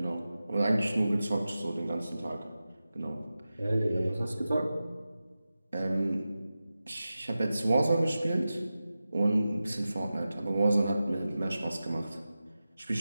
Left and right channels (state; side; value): inverted; both; correlation -0.94